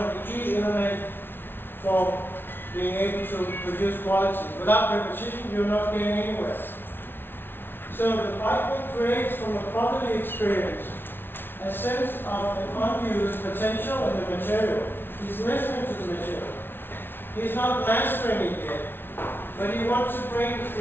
the key elements for being able to produce quality. Without repetition, you're not getting anywhere. So the piping creates from a properly experience a sense of an unused potential in the material. He's listening to the material. He's not mastering it yet, but he wants to bring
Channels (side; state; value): right; late; 0.11 ms